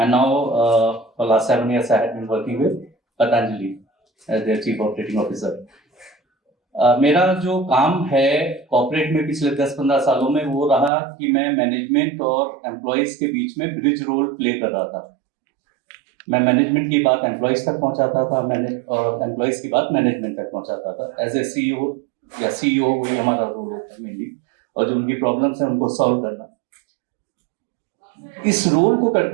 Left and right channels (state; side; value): drops out; left; at 10.9 s